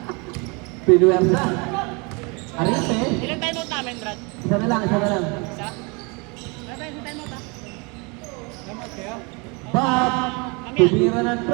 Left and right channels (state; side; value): quieter; left; 30.0 dB